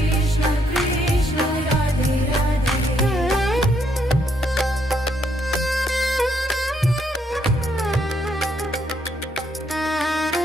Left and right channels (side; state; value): both; normal; correlation 0.73